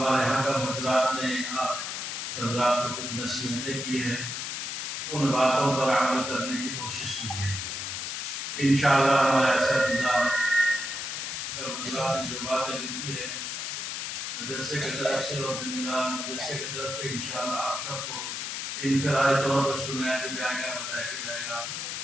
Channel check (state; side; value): noise; left; hiss, 4 dB below the sound